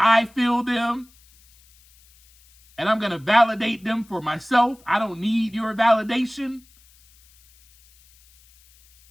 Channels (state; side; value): noise; left; hiss, 30 dB below the sound